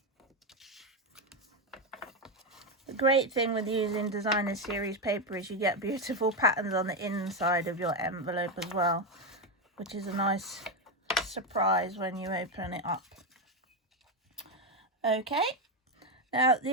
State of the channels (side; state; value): both; normal; correlation 0.09